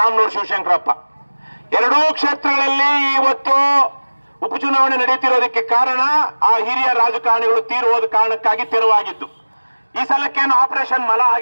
ಶಿವಶಂಕರಪ್ಪ. ಎರಡೂ ಕ್ಷೇತ್ರಗಳಲ್ಲಿ ಇವತ್ತು ಉಪಚುನಾವಣೆ ನಡೀತಿರೋದಕ್ಕೆ ಕಾರಣ ಆ ಹಿರಿಯ ರಾಜಕಾರಣಿಗಳು ತೀರಿ ಹೋದ ಕಾರಣಕ್ಕಾಗಿ ತೆರವಾಗಿದ್ದು. ಈ ಸಲಕ್ಕೇನು ಆಪರೇಷನ್ ಮಲ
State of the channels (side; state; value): both; inverted; correlation -1.00